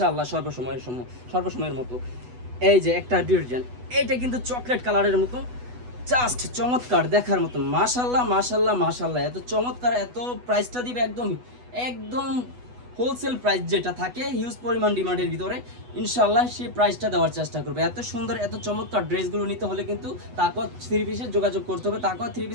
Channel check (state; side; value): late; left; 8.1 ms